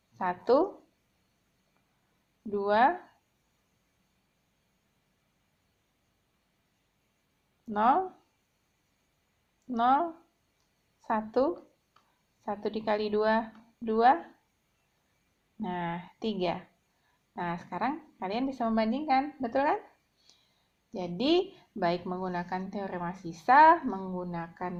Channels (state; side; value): identical; both; correlation 1.00